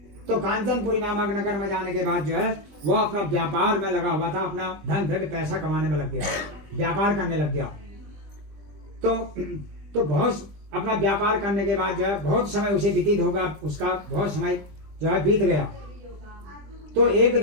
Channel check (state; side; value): late; left; 20 ms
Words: तो कांचनपुरी नामक नगर में जाने के बाद जो है वह अपना व्यापार में लगा हुआ था, अपना धन द्रव्य पैसा कमाने में लग गया, व्यापार करने लग गया। तो बहुत अपना व्यापार करने के बाद जो है बहुत समय उसे व्यतीत होगा, उसका बहुत समय जो है बीत गया। तो एक